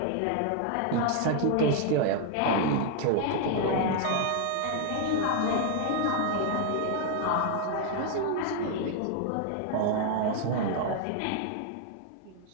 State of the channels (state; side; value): different; both; correlation 0.00